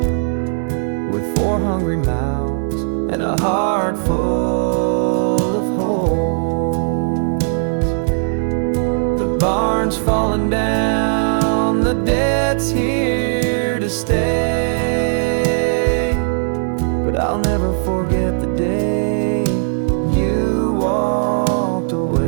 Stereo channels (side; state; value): left; silent; digital silence